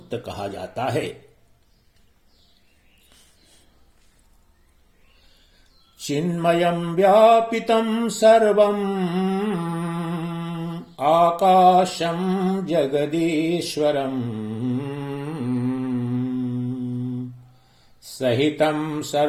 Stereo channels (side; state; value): both; identical; correlation 1.00